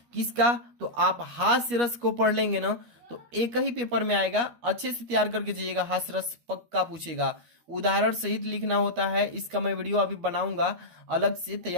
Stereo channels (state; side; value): late; left; 12 ms